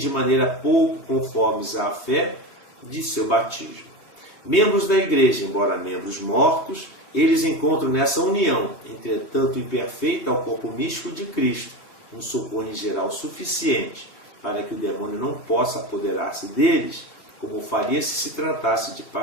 maneira pouco conformes à fé de seu batismo. Membros da igreja, embora membros mortos, eles encontram nessa união, entretanto imperfeita ao corpo místico de Cristo, um socorro em geral suficiente para que o demônio não possa apoderar-se deles, como faria se tratasse de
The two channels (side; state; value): right; late; 3.3 ms